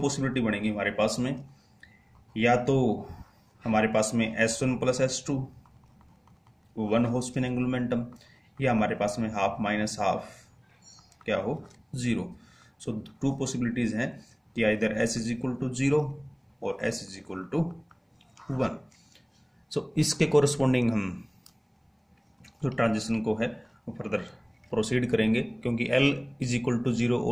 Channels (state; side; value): identical; both; correlation 1.00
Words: पॉसिबिलिटी बनेगी हमारे पास में. या तो हमारे पास में S1 प्लस S2 वन हो स्पिन एंगुलर मोमेंटम, या हमारे पास में हाफ माइनस हाफ क्या हो 0. सो टू पॉसिबिलिटीज़ हैं कि either S is equal to 0 और S is equal to 1. So इसके कोरस्पॉन्डिंग हम जो ट्रांजिशन को है वो फर्दर प्रोसीड करेंगे क्योंकि L is equal to 0